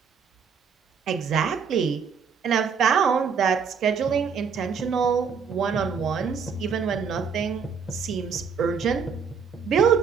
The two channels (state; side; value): quieter; left; 6.2 dB